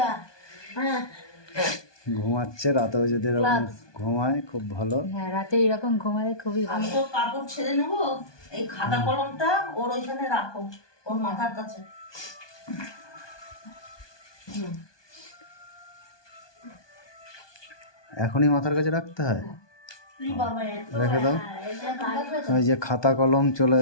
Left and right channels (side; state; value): right; late; 1.2 ms